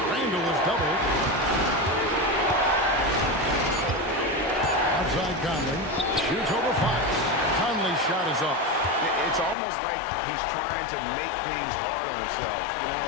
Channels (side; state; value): right; drops out; at 9.6 s